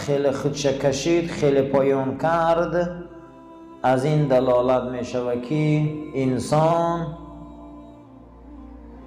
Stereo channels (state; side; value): identical; both; correlation 1.00